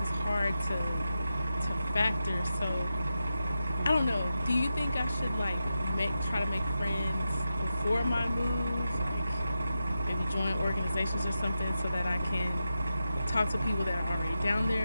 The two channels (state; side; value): inverted; both; correlation -0.91